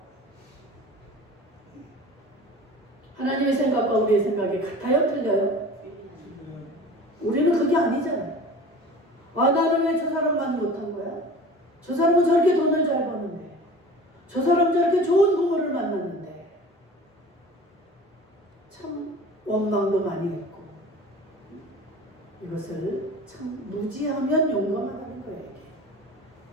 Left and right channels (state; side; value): normal; both; correlation 0.40